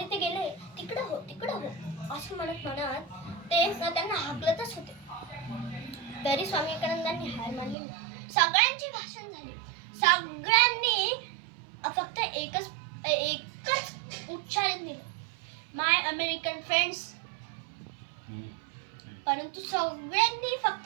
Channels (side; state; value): left; drops out; at 7.8 s